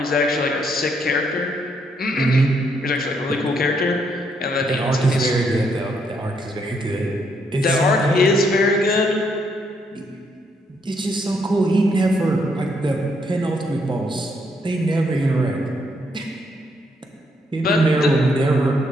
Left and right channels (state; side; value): normal; both; correlation 0.74